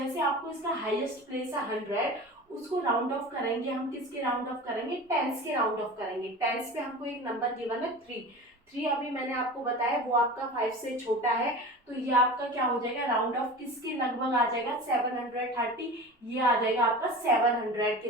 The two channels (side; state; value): both; normal; correlation 0.34